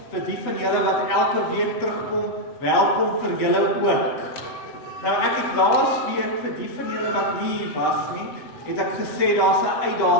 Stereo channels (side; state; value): right; late; 7.7 ms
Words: Vir die van julle wat elke week terugkom, welkom vir julle ook. Nou ek het laas week vir die van julle wat nie hier was nie, het ek gesê daar's 'n